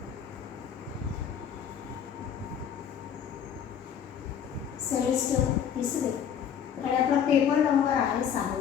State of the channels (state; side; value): quieter; right; 8.4 dB